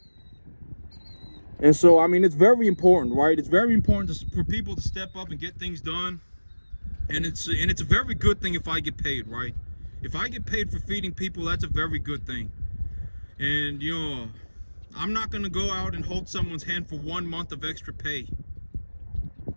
And so, I mean, it's very important, right? It's very important for people to step up and get things done. And it's a very good thing if I get paid, right? If I get paid for feeding people, that's a very good thing. And, you know, I'm not going to go out and hold someone's hand for 1 month of extra pay.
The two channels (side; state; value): both; inverted; correlation -1.00